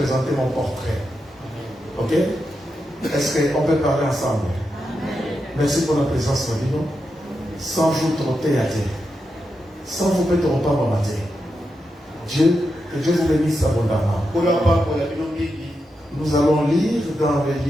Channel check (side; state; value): both; normal; correlation 0.87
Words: mon portrait. Ok? Est-ce qu'on peut parler ensemble? Merci pour la présence de nous. Sans vous trotter à Dieu. Sans vous mettre au pas matin. Dieu, que Dieu vous bénisse abondamment. Nous allons lire dans le